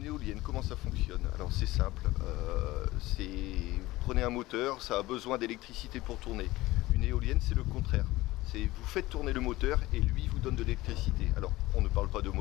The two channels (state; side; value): quieter; right; 18.4 dB